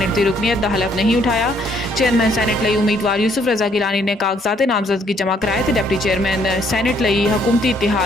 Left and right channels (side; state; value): both; normal; correlation 0.67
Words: की रुकनीत का हलफ नहीं उठाया। चेयरमैन सैनेट लई उम्मीदवार यूसुफ रजा गिलानी ने कागजात नामजदगी जमा कराए तो डिप्टी चेयरमैन सैनेट लई हुकूमती